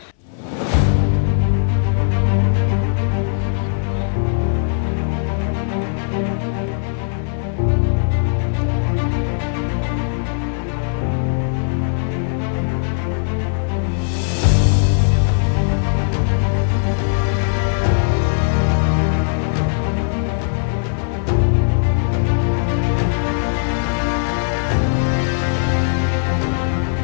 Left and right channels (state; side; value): silent; right; 67 dB below the other